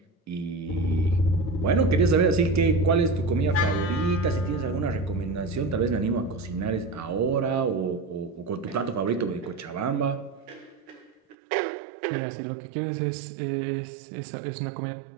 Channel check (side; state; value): left; drops out; at 11.4 s